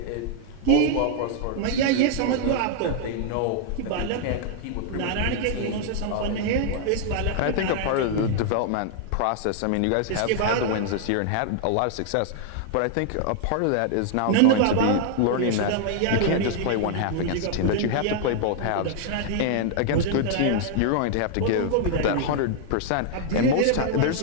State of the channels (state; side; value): different; both; correlation 0.00